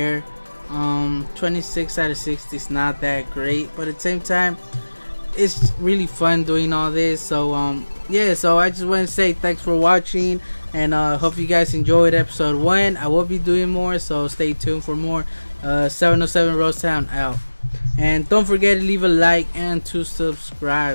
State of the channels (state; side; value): inverted; both; correlation -1.00